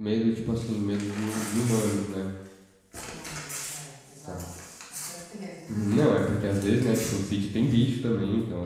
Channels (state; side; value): identical; both; correlation 1.00